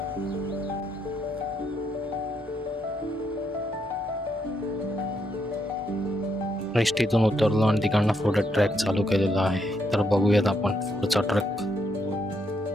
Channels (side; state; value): both; normal; correlation 0.77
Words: एसटीतून उतरलो आणि तिकडनं पुढे ट्रॅक चालू केलेला आहे. तर बघूयात आपण पुढचा ट्रॅक.